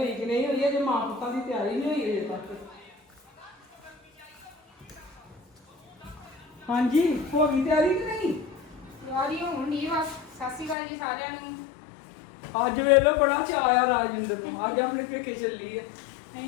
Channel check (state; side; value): drops out; right; at 10.8 s